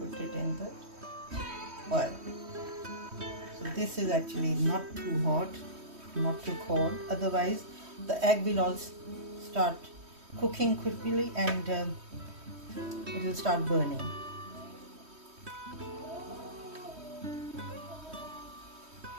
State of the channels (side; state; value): left; late; 3.2 ms